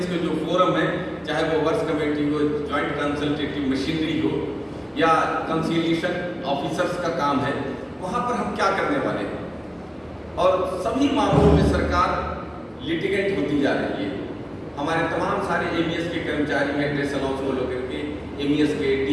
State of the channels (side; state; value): both; identical; correlation 1.00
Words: के जो फोरम है, चाहे वो वर्क्स कमेटी हो, जॉइंट कंसल्टेटिव मशीनरी हो, या कंसिलिएशन ऑफिसर्स का काम है, वहाँ पर हम क्या करने वाले हैं। और सभी मामलों में सरकार लिटिगेंट होती जा रही है। हमारे तमाम सारे एमईएस के कर्मचारी हैं ड्रेस अलाउंस को लेकर के, एमईएस के